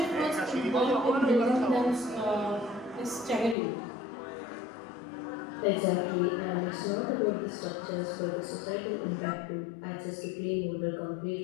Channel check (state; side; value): drops out; right; at 3.6 s